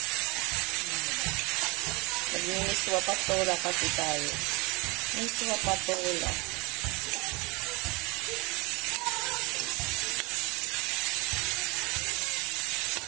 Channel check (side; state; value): left; quieter; 26.3 dB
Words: Nagmimiswa patola kasi tayo. Miswa patola.